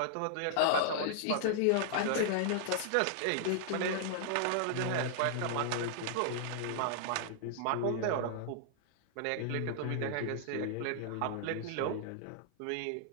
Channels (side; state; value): both; different; correlation -0.01